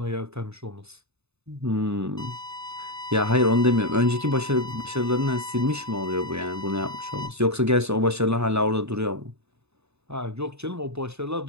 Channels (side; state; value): left; late; 0.80 ms